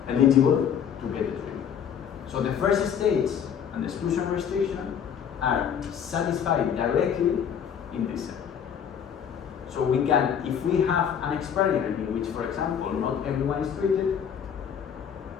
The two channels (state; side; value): quieter; right; 8.1 dB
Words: eligible to get the treatment. So the first stage and the exclusion restriction are satisfied directly in this setting. So we can, if we have an experiment in which, for example, not everyone is treated,